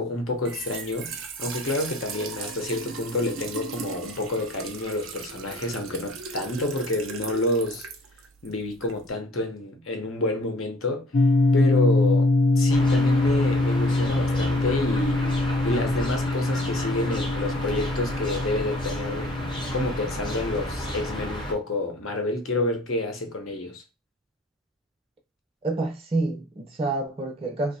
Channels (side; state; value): both; normal; correlation 0.54